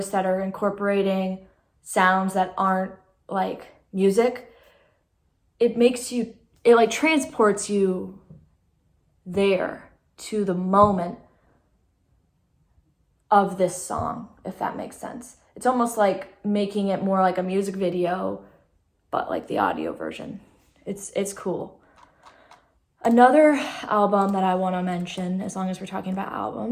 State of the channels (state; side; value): identical; both; correlation 1.00